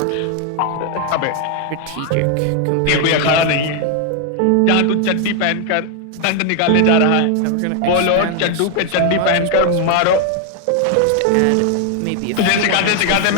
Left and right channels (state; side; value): different; both; correlation 0.00